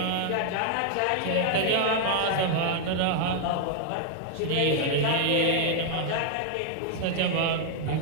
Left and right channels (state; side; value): different; both; correlation 0.00